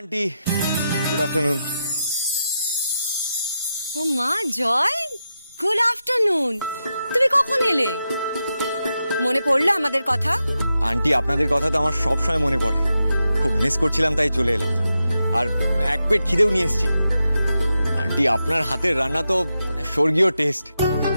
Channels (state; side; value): inverted; both; correlation -0.88